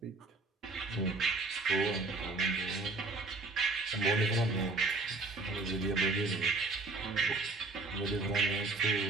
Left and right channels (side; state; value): left; quieter; 3.4 dB